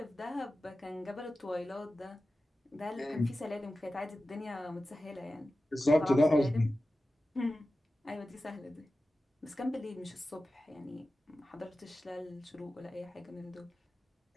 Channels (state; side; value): normal; both; correlation 0.94